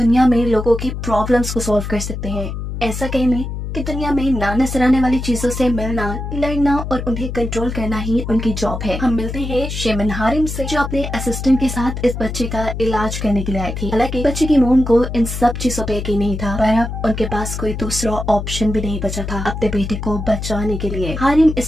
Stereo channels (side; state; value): left; noise; hum, 6 dB below the sound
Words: में लोगों की प्रॉब्लम्स को सॉल्व कर सकते हैं। ऐसा कहने कि दुनिया में ना नजर आने वाली चीजों से मिलना, लड़ना और उन्हें कंट्रोल करना ही उनकी जॉब है। हम मिलते हैं शेमन हारिम से, जो अपने असिस्टेंट के साथ इस बच्चे का इलाज करने के लिए आई थी। हालांकि बच्चे की मोम को इन सब चीजों पे यकीन नहीं था, पर अब उनके पास कोई दूसरा ऑप्शन भी नहीं बचा था अपने बेटे को बचाने के लिए। हारिम